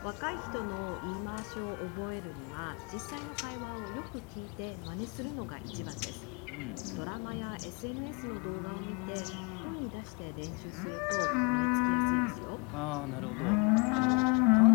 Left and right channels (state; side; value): quieter; right; 32.7 dB